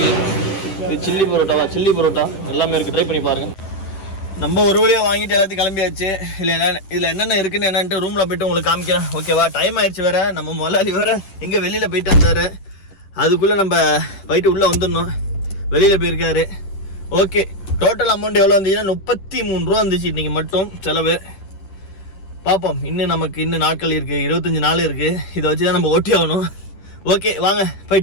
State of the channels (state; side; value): late; right; 10 ms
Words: இது சில்லி பரோட்டாவா, சில்லி பரோட்டா எல்லாமே இருக்குது. ட்ரை பண்ணி பாருங்கள். நம்ம ஒரு வழியாக வாங்கிட்டு எல்லாத்தையும் கிளம்பியாச்சு. இதில் என்னென்ன இருக்குன்னு என்னன்ட்டு ரூமில் போய்ட்டு உங்களுக்கு காமிக்கிறேன். ஓகேவா? டைம் ஆயிடுச்சு வேறு. நம்ம முதலாளி வேறு எங்கே வெளியில் போயிட்டு வந்தார். அதுக்குள்ளே நம்ம போயிட்டு உள்ளே வந்துடணும். வெளியில் போயிருக்காரு. ஓகே, டோட்டல் அமௌண்ட் எவ்வளோ வந்துச்சுன்னா 33 ரூபா வந்துச்சு இன்றைக்கி மட்டும் செலவு. பார்ப்போம், இன்னும் நாட்கள் இருக்குது, 25 நாள் இருக்குது. இதை வச்சு தான் நம்ம ஓட்டி ஆகணும். ஓகே, வாங்க